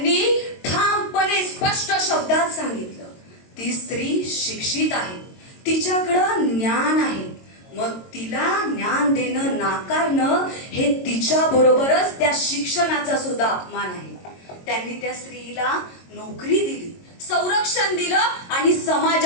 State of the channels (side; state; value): right; late; 22 ms